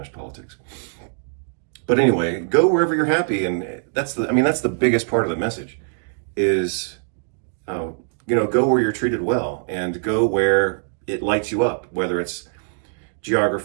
politics. But anyway, go wherever you're happy, and that's the biggest part of the message, is go where you're treated well, and go where it lights you up, whether it's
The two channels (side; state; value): left; silent; digital silence